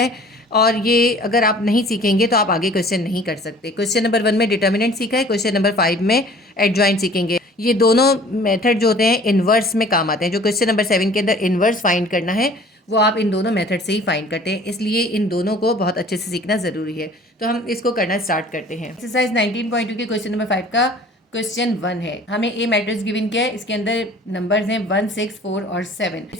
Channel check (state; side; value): normal; both; correlation 0.49